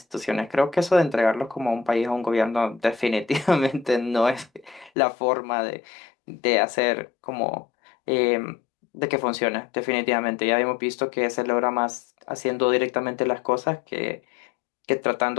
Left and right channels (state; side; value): drops out; right; at 4.9 s